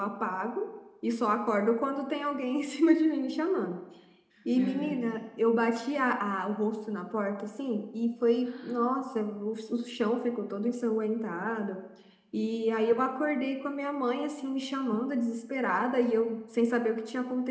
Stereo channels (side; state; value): both; identical; correlation 1.00